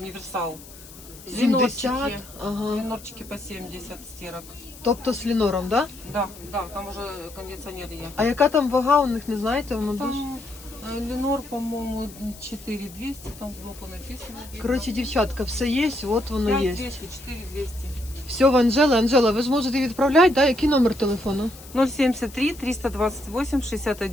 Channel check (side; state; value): left; noise; hiss, 19 dB below the sound